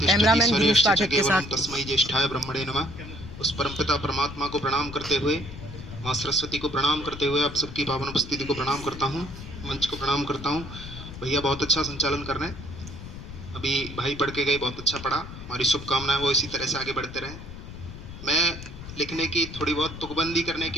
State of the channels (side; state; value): left; noise; rumble, 12 dB below the sound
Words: कैमरामैन गिरीश स्वरेश्च च पाठक के केवलम साथ तस्मै ज्येष्ठाय ब्रह्मणे नमः। उस परमपिता परमात्मा को प्रणाम करते हुए, माँ सरस्वती को प्रणाम करते हुए आप सबकी पावन उपस्थिति को प्रणाम करता हूँ, मंच को प्रणाम करता हूँ। भैया बहुत अच्छा संचालन कर रहे हैं, अभी भाई पढ़ के गए, बहुत अच्छा पढ़ा। हमारी शुभकामनाएं वो इसी तरह से आगे बढ़ते रहें। मैं लिखने की थोड़ी बहुत तुकबंदी करने